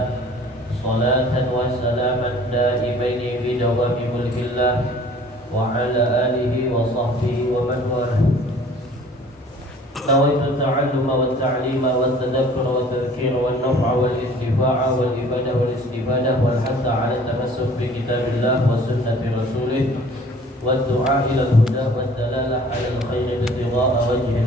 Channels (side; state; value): both; normal; correlation 0.51